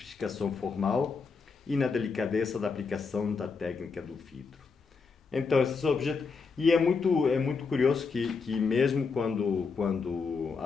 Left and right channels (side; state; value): right; quieter; 4.9 dB